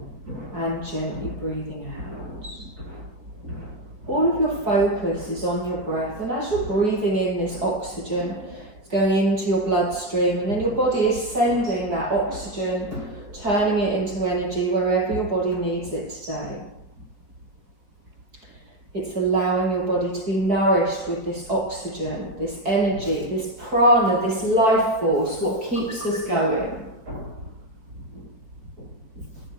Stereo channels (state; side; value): late; left; 4.6 ms